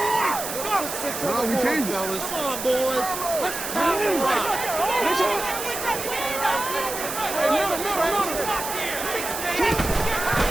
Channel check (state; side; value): noise; right; hiss, 6 dB below the sound